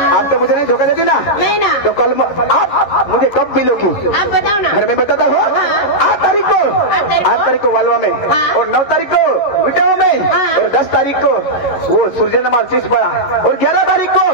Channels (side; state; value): right; late; 11 ms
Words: मुझे नहीं धोखा देती ना नहीं ना तो कल आप मुझे कब मिलोगी आप बताओ ना घर में बताता हूँ हाँ। 8 तारीख को वालवा में हाँ। और 9 तारीख को विटावा में हाँ। और 10 तारीख को वो सूर्यनमाल चिसपड़ा और 11 तारीख को